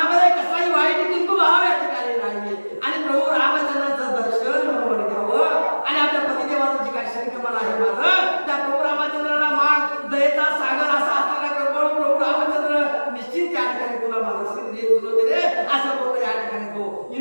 कसलाही वाईट किंतु भाव या ठिकाणी नाहीये आणि प्रभू रामचंद्राचं दर्शन म्हणून घ्यावं आणि आपल्या पतिदेवाचं जे काही शरीरकमल आहे माझं त्या प्रभू रामचंद्राला माग दयेचा सागर असा असलेला कृपाळू प्रभू रामचंद्र निश्चित या ठिकाणी तुला माझा सिद्ध देत सुलोचने असं बोलतो या ठिकाणी तो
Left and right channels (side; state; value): both; inverted; correlation -1.00